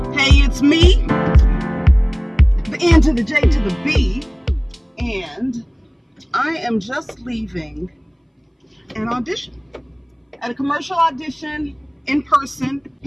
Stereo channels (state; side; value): identical; both; correlation 1.00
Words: Hey, it's me. The N to the J to the B. And I am just leaving an audition. At a commercial audition in person.